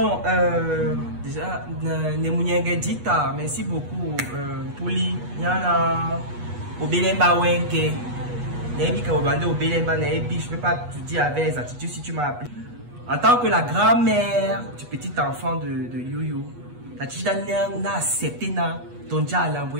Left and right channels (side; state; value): left; late; 8.3 ms